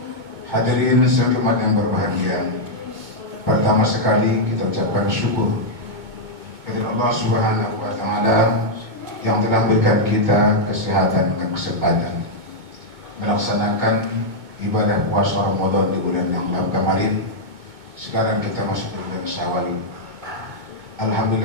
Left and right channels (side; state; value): left; late; 2.2 ms